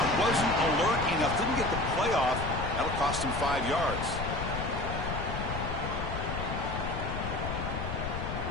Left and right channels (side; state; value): left; noise; rumble, 4 dB below the sound